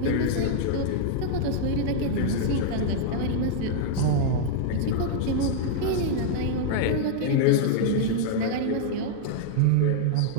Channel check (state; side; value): different; both; correlation -0.01